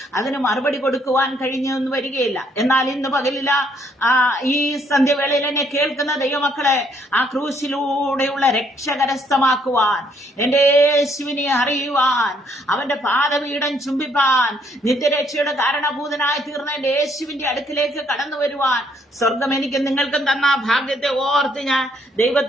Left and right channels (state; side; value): normal; both; correlation 0.68